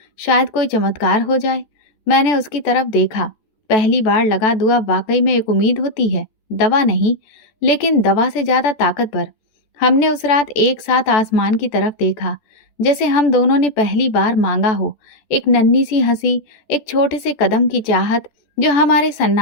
शायद कोई चमत्कार हो जाए। मैंने उसकी तरफ देखा। पहली बार लगा दुआ वाकई में एक उम्मीद होती है, दवा नहीं, लेकिन दवा से ज्यादा ताकतवर। हमने उस रात एक साथ आसमान की तरफ देखा, जैसे हम दोनों ने पहली बार मांगा हो। एक नन्ही सी हंसी, एक छोटे से कदम की चाहत जो हमारे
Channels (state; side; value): late; right; 14 ms